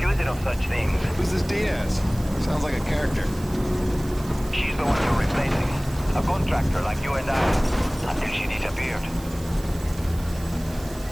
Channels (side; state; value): right; noise; hiss, 19 dB below the sound